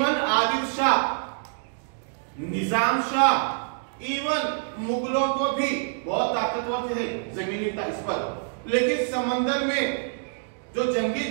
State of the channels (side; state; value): left; silent; digital silence